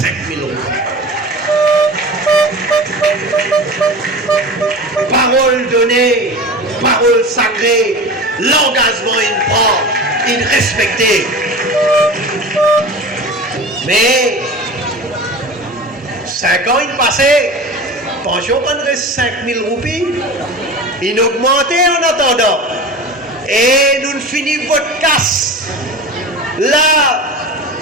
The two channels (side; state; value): both; normal; correlation 0.33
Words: roupies. Parole donnée, parole sacrée, l'engagement il prend, il respecté. Mais 5 ans il passait, pension prendrait 5000 roupies, il augmentait en attendant. Et nous finissons votre casse. Là,